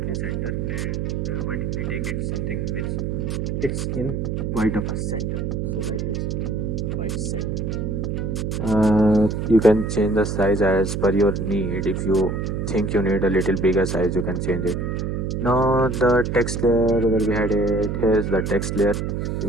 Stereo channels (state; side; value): noise; right; hum, 1 dB below the sound